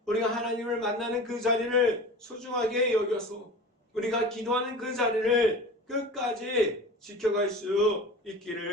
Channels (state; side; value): normal; both; correlation 0.35